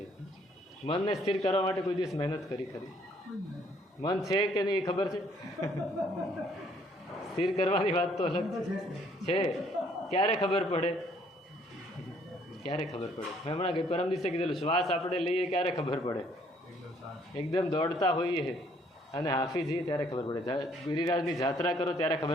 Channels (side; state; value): both; normal; correlation 0.64